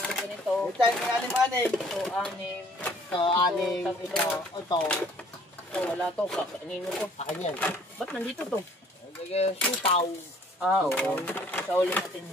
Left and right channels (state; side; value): normal; both; correlation 0.57